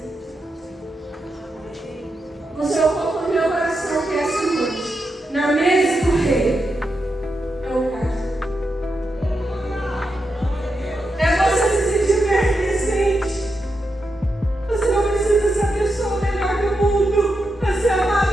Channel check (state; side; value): normal; both; correlation 0.86